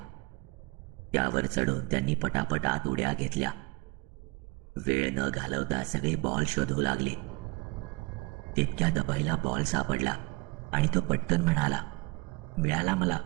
त्यावर चढून त्यांनी पटापट आत उड्या घेतल्या. वेळ न घालवता सगळे बॉल शोधू लागले. तितक्यात अभयला बॉल सापडला आणि तो पटकन म्हणाला, मिळाला मला,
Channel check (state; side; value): quieter; left; 24.5 dB